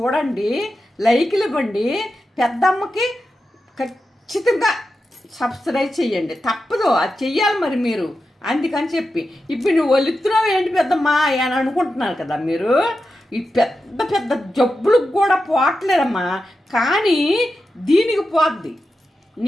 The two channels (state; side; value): normal; both; correlation 0.90